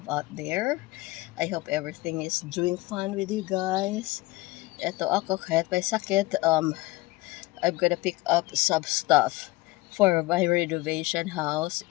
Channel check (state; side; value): quieter; right; 20.7 dB